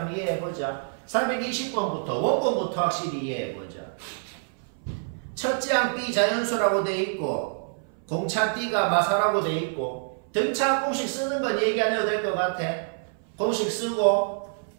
이해해보자. 420번부터 원본부터 확실히 이해해보자. 첫째 항 B 자연수라고 돼 있고 공차 D가 마사라고 돼 있고 등차 공식 쓰는 건 얘기 안 해도 될 것 같아. 공식 쓰고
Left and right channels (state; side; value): silent; left; 58 dB below the other